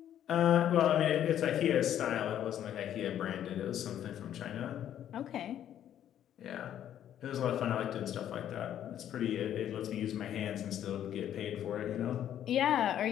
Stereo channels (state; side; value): quieter; right; 10.7 dB